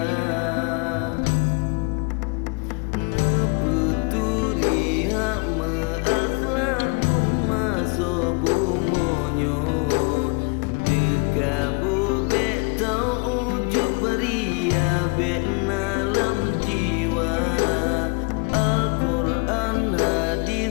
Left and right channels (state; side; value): quieter; right; 31.6 dB